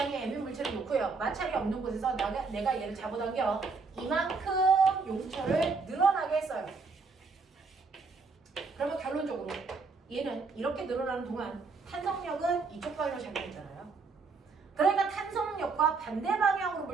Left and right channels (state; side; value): quieter; left; 4.4 dB